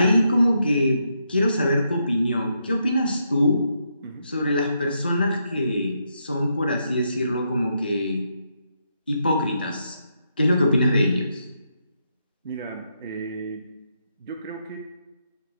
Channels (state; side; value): inverted; both; correlation -0.80